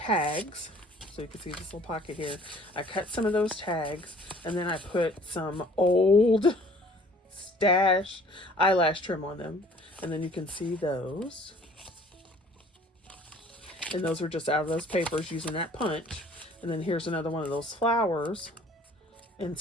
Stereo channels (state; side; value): normal; both; correlation 0.53